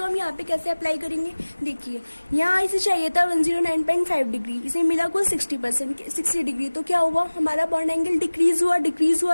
हम यहाँ पे कैसे अप्लाई करेंगे, देखिए यहाँ इसे चाहिए था 109.5 डिग्री, इसे मिला कुल 60 डिग्री। तो क्या हुआ, हमारा बॉन्ड एंगल डिक्रीज हुआ,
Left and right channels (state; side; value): inverted; both; correlation -1.00